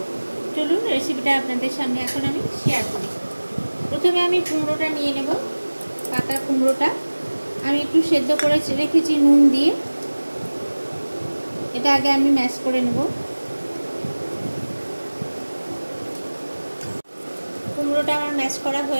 চলুন রেসিপিটা আপনাদের সামনে এখন আমি শেয়ার করি। প্রথমে আমি কুমড়োটা নিয়ে নেব। পাকা কুমড়োটা আমি একটু সেদ্ধ করে রেখেছি নুন দিয়ে। এটা আগে আমি ম্যাশ করে নেব। কুমড়োটা আমার ম্যাশ করা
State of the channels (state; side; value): inverted; both; correlation -1.00